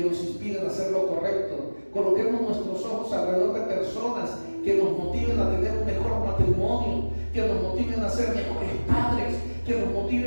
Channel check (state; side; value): inverted; both; correlation -1.00